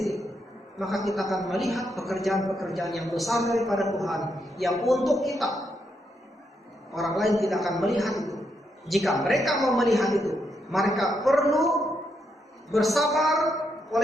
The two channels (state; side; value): normal; both; correlation 0.80